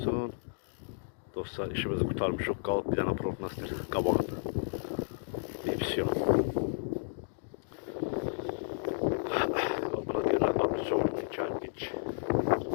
Dostlar, işimizi kurtarmışıq, qalıb bir dənə prognostik qabağında. Divisiyon. Buna deyirlər, abrisovni kərpiç.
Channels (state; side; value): silent; right; digital silence